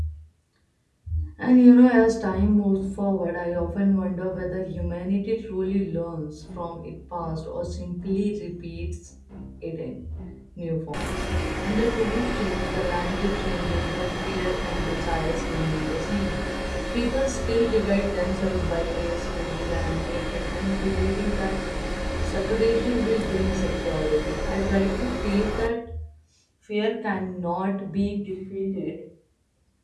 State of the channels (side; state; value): both; identical; correlation 1.00